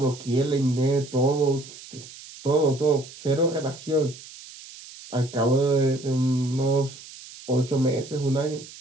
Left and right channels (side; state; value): right; noise; hiss, 17 dB below the sound